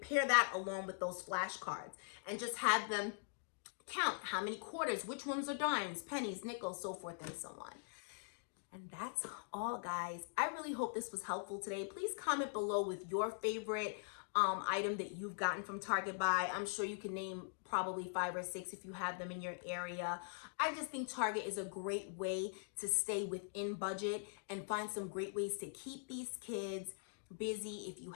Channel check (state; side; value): silent; right; digital silence